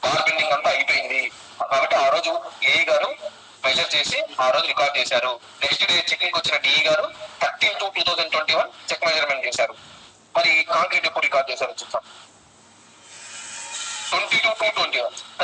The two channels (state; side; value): identical; both; correlation 1.00